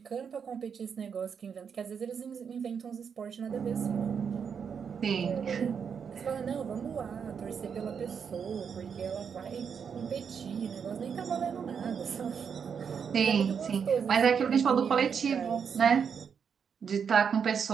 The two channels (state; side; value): quieter; left; 6.8 dB